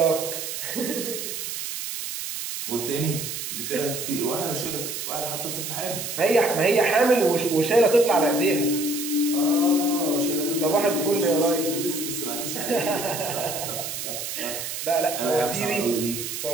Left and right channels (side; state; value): right; noise; hiss, 5 dB below the sound